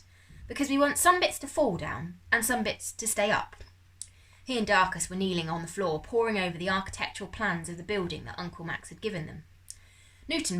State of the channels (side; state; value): both; identical; correlation 1.00